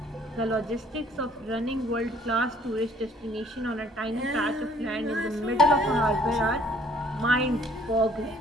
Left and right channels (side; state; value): both; normal; correlation 0.59